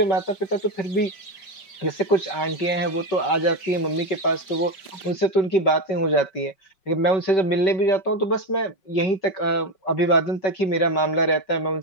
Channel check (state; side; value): late; right; 5.5 ms